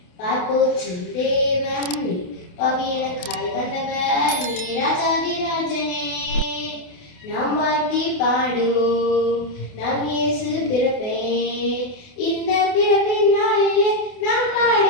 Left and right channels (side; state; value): right; late; 28 ms